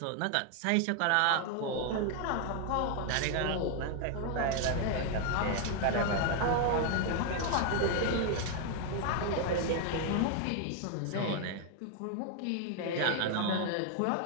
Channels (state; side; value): different; both; correlation 0.00